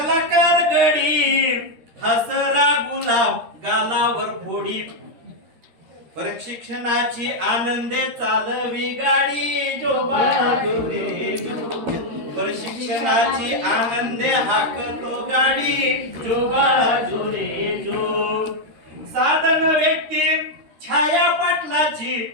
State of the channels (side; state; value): left; late; 13 ms